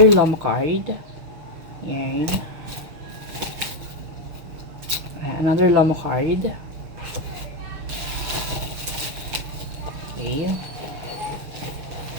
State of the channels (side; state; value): left; late; 6.5 ms